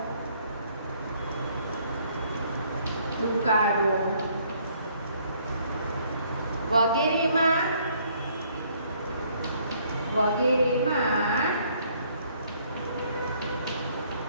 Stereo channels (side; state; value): both; inverted; correlation -0.64